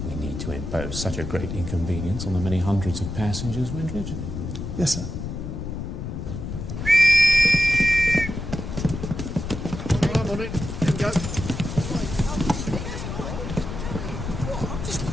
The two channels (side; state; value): left; noise; rumble, 6 dB below the sound